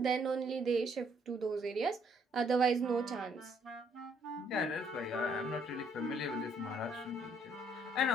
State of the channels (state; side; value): normal; both; correlation 0.67